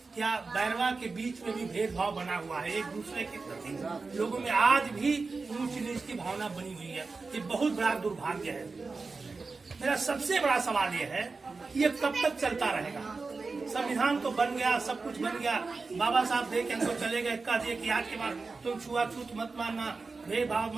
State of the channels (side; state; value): left; quieter; 4.1 dB